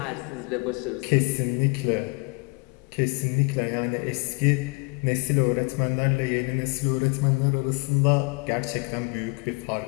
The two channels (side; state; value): right; quieter; 31.4 dB